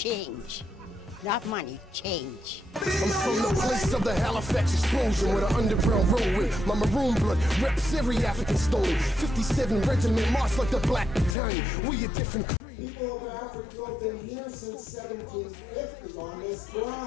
Not money, change. I'm from the place of the Halifax explosion, where the underground road with my maroon blood reps every African story. 57 regiment marched like the Black Battalion. We a different. People of Africville have been here since 1750 on this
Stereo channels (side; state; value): right; drops out; at 11.4 s